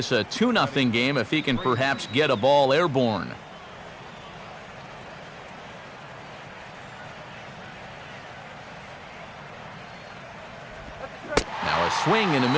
a 2-0 game if he can perhaps get a ball airborne. Now a swing and a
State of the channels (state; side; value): identical; both; correlation 1.00